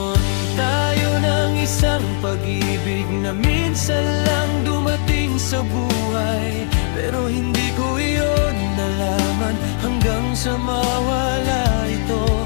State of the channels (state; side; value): silent; right; digital silence